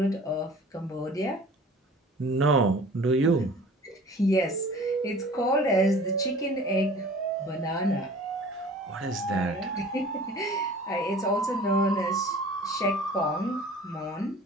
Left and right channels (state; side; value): normal; both; correlation 0.45